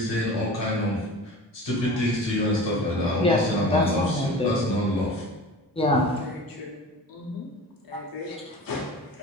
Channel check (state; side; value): normal; both; correlation 0.37